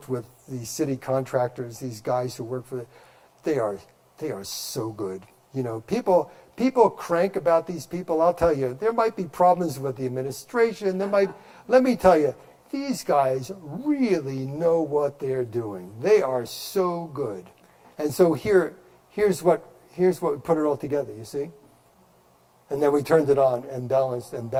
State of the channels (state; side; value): identical; both; correlation 1.00